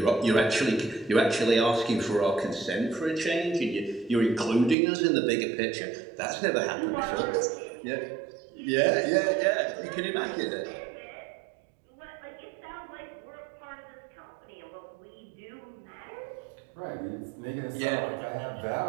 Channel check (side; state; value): left; drops out; at 4.8 s